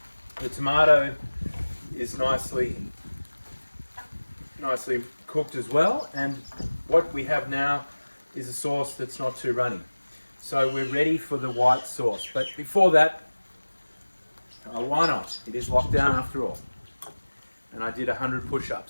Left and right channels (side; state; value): both; inverted; correlation -1.00